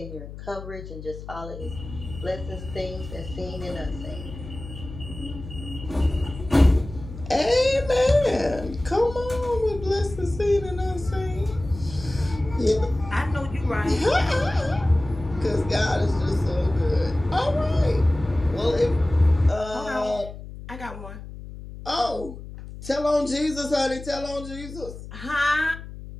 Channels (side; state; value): left; noise; hum, 13 dB below the sound